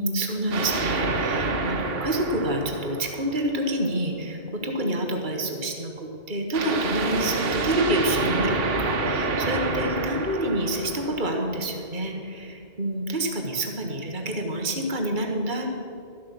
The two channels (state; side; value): late; left; 2.3 ms